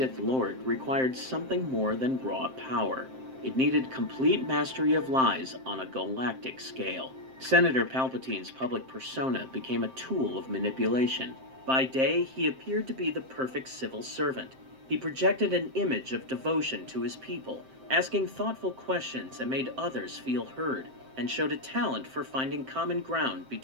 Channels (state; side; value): late; left; 7.7 ms